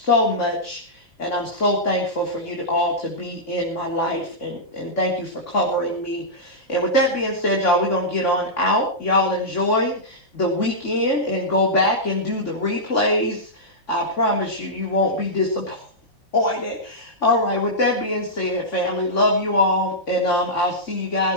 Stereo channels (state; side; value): normal; both; correlation -0.12